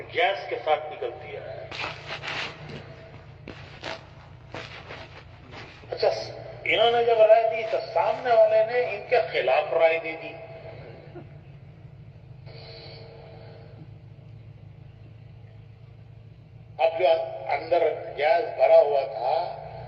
گیس کے ساتھ نکلتی ہے. اچھا، انہوں نے جب رائے دی تو سامنے والے نے ان کے خلاف رائے دے دی. اب جو اندر گیس بھرا ہوا تھا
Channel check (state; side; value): identical; both; correlation 1.00